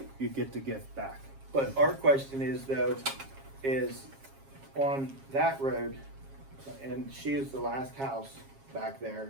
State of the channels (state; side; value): late; left; 7.4 ms